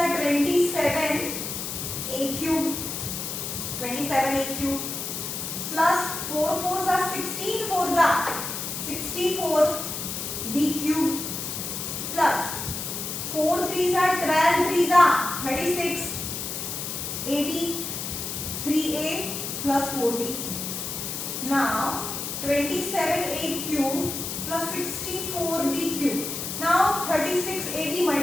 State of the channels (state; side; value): noise; left; hiss, 5 dB below the sound